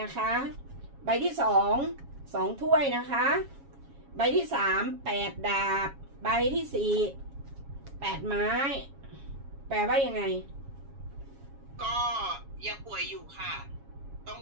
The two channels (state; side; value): late; left; 7.3 ms